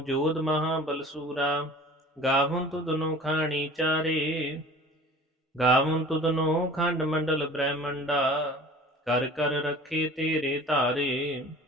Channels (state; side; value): normal; both; correlation 0.44